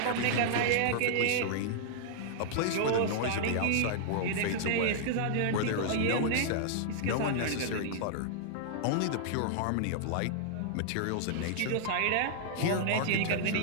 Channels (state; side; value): different; both; correlation -0.01